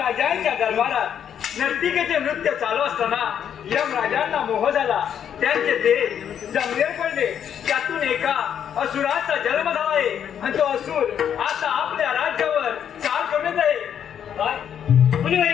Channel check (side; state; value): right; quieter; 8.8 dB